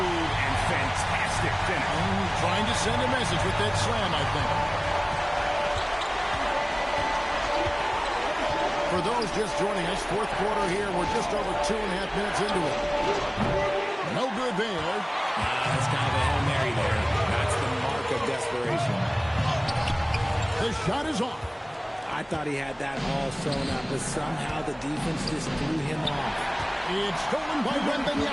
and fantastic finish. Trying to send a message with that slam, I think. For those just joining us, fourth quarter here. We're just over 2.5 minutes into it. No good there. That's kind of a Hail Mary there. That's the mark of desperation. The shot is off. I thought he had that ball sewn up, but somehow the defense just threw him off. It's stolen by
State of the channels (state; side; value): identical; both; correlation 1.00